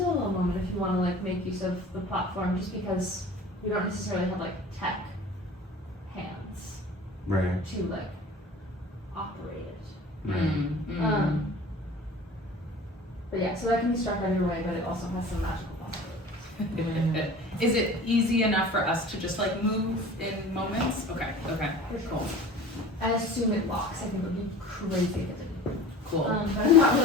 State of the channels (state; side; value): normal; both; correlation 0.41